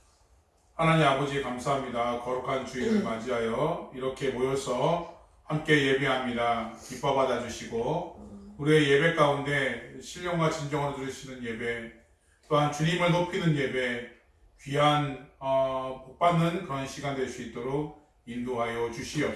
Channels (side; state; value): both; identical; correlation 1.00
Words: 하나님 아버지 감사합니다. 거룩한 주일을 맞이하여 이렇게 모여서 함께 예배합니다. 기뻐 받아주시고 우리의 예배 가운데 신령과 진정으로 들으시는 예배, 또한 주님을 높이는 예배, 귀한 복받는 그런 시간 될 수 있도록 인도하여